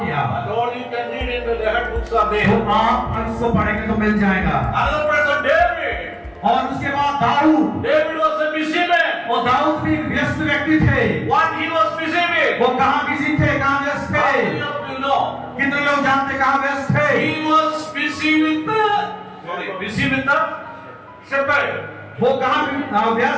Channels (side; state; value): both; identical; correlation 1.00